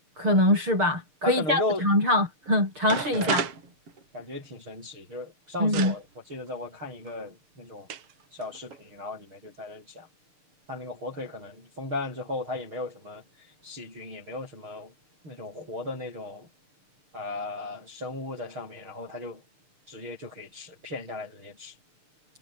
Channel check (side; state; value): left; late; 6.7 ms